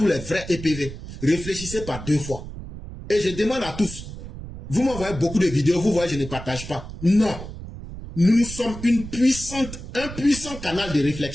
les vrais EPV, réfléchissez par 2 fois. Et je demande à tous, vous m'envoyez beaucoup de vidéos, vous voyez, je ne partage pas. Non. Nous sommes un puissant canal de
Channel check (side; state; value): right; noise; rumble, 11 dB below the sound